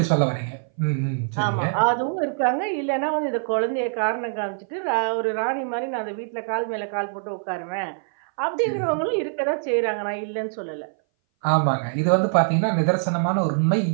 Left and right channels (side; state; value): left; silent; 59 dB below the other